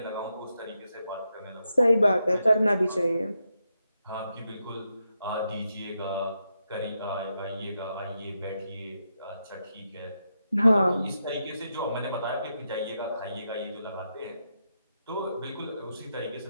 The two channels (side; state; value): both; inverted; correlation -0.84